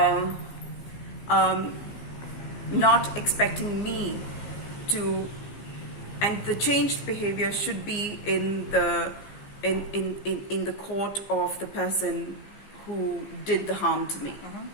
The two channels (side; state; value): right; late; 15 ms